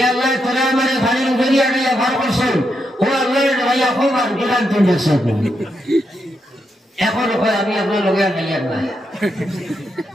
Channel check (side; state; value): both; normal; correlation 0.82